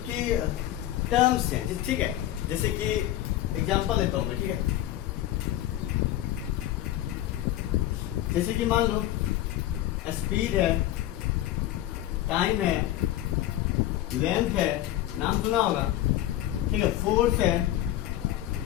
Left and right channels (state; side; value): quieter; right; 13.6 dB